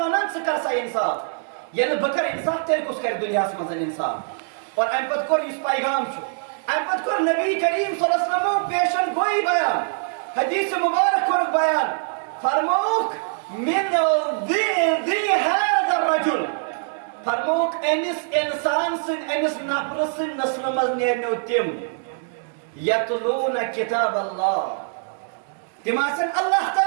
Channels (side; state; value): left; silent; digital silence